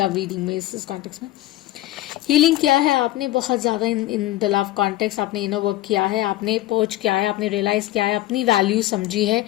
रीडिंग में, इस कॉन्टेक्स्ट में. हीलिंग किया है आपने बहुत ज़्यादा इन द लव कॉन्टेक्स्ट. आपने इनर वर्क किया है, आपने पर्च किया है, आपने रियलाइज़ किया है, अपनी वैल्यू समझी है,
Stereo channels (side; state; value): right; quieter; 15.7 dB